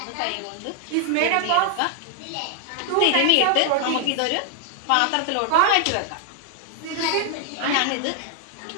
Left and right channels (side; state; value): both; different; correlation 0.00